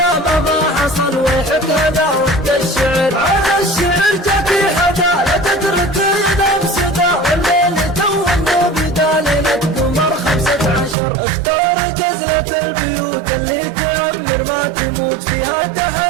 ما حصل ويحك هذا وقت الشعر. على الشعر جاكي حدا لا تترك ينام سدا والليل تو بدا ليلة قمر 15. اختار جزلة البيوت اللي تعمر ما تموت فيها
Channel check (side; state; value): left; drops out; at 11.0 s